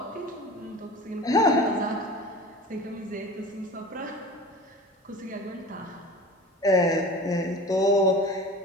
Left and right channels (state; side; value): normal; both; correlation 0.37